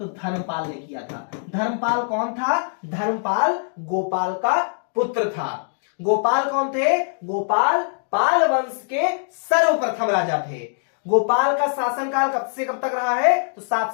धर्मपाल ने किया था। धर्मपाल कौन था? धर्मपाल गोपाल का पुत्र था। गोपाल कौन थे? गोपाल पाल वंश के सर्वप्रथम राजा थे। गोपाल का शासनकाल कब से कब तक रहा है? तो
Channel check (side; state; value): right; silent; digital silence